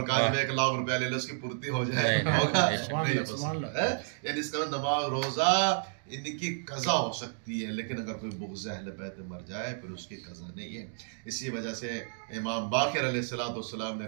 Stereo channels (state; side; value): silent; left; digital silence